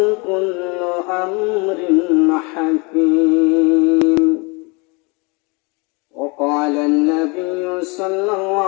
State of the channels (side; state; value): right; quieter; 29.7 dB